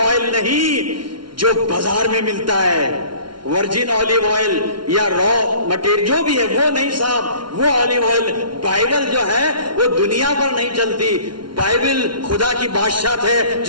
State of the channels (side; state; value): left; late; 0.72 ms